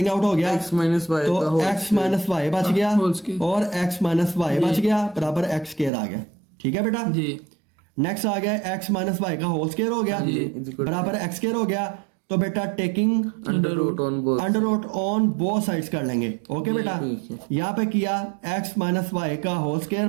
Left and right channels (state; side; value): drops out; left; at 5.9 s